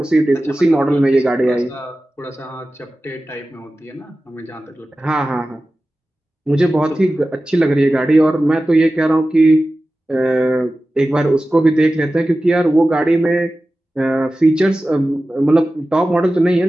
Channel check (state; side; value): normal; both; correlation 0.95